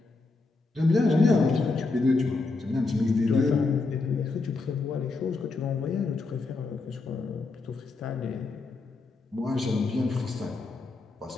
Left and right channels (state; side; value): quieter; right; 3.7 dB